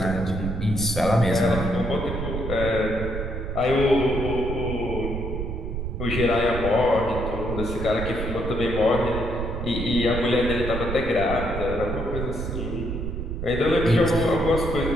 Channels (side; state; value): right; noise; rumble, 4 dB below the sound